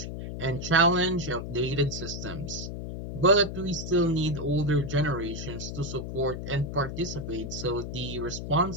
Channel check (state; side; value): noise; left; hum, 7 dB below the sound